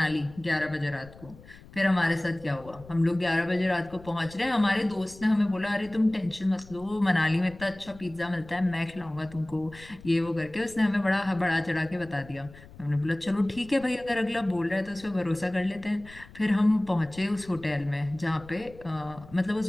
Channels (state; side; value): noise; left; rumble, 20 dB below the sound